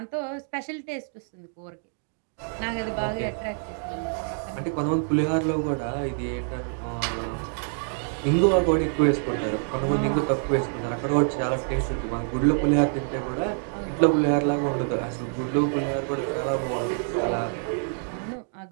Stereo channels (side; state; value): left; silent; 61 dB below the other